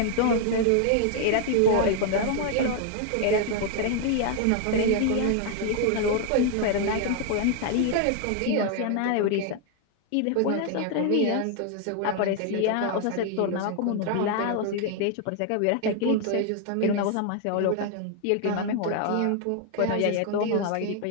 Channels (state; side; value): different; both; correlation 0.00